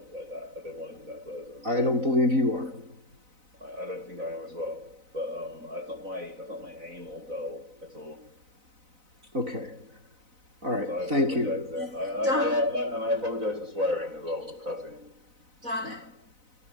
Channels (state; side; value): late; left; 4.0 ms